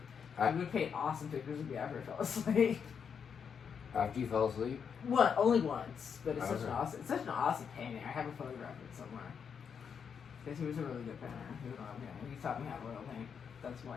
I would paint awesome pictures of me after I fell asleep. After you fell asleep? Only once, but it's such an awesome painting. I have a photograph of it somewhere. Because he was a really good painter. He taught me how to oil paint. That's why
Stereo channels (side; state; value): right; quieter; 6.9 dB